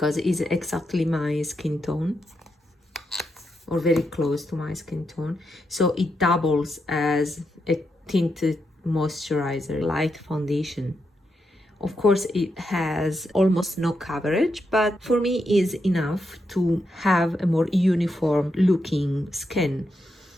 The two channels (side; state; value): both; normal; correlation 0.83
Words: it's exactly my skin tone, or very close to my skin tone. So it doubles as a tinted moisturizer, light foundation. Of course, it has almost no coverage, but for me is enough to have a more uniform looking skin.